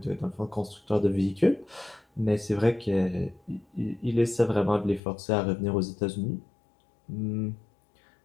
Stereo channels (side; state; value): right; drops out; at 5.0 s